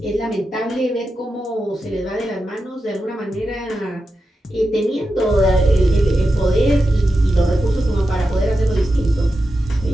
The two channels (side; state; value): both; normal; correlation 0.90